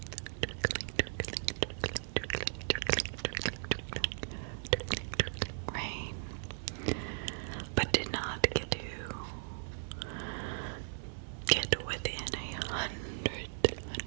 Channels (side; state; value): left; silent; digital silence